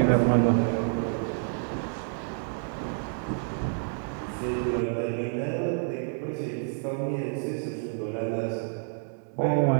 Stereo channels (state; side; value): silent; left; 59 dB below the other